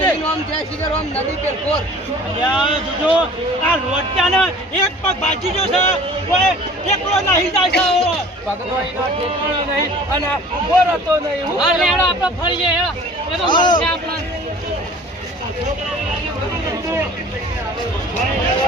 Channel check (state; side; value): normal; both; correlation 0.47